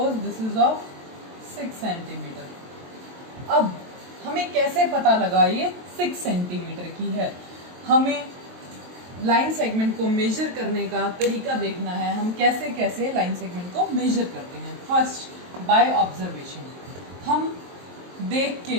this is of 6 centimetre. अब हमें कैसे पता लगा ये 6 सेंटीमीटर की है? हमें लाइन सेगमेंट को मेजर करने का तरीका देखना है, हम कैसे कैसे लाइन सेगमेंट को मेजर करते हैं। फर्स्ट बाय ऑब्जर्वेशन, हम देख के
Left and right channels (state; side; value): late; left; 23 ms